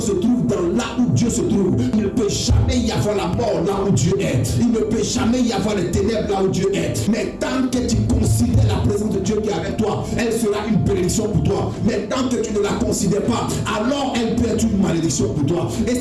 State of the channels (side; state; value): both; identical; correlation 1.00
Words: se trouve dans là où Dieu se trouve. Il ne peut jamais y avoir la mort là où Dieu est. Il ne peut jamais y avoir les ténèbres là où Dieu est. Mais tant que tu considères la présence de Dieu qui est avec toi, elle sera une bénédiction pour toi. Mais tant que tu ne la considères pas, alors elle peut être une malédiction pour toi. Et